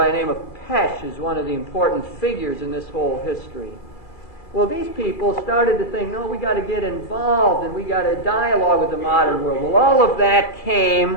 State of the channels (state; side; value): late; right; 2.0 ms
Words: the name of Pesch is one of the important figures in this whole history. Well, these people started to think, no, we got to get involved and we got to dialogue with the modern world. Well, all of that